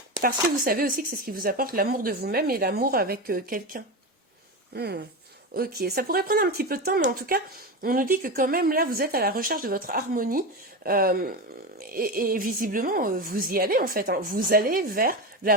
Parce que vous savez aussi que c'est ce qui vous apporte l'amour de vous-même et l'amour avec quelqu'un. Ok, ça pourrait prendre un petit peu de temps, mais en tout cas, on nous dit que quand même là, vous êtes à la recherche de votre harmonie, et visiblement, vous y allez en fait, hein. Vous allez vers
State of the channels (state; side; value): normal; both; correlation 0.19